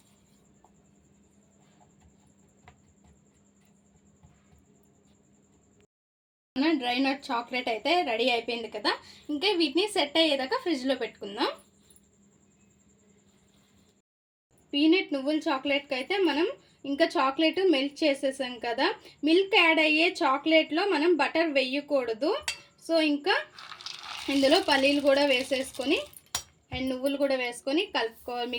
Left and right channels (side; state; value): both; identical; correlation 1.00